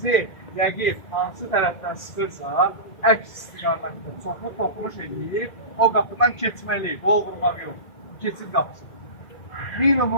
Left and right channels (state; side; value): late; right; 1.9 ms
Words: rəqib hansı tərəfdən sıxırsa, əks istiqamətdə çoxlu toxunuş edib, o qapıdan keçməliyik, qol vurmaq yox, keçid qapısı.